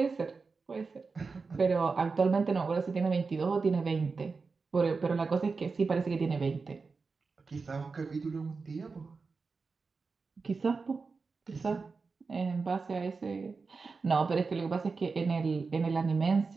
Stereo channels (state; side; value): quieter; left; 4.5 dB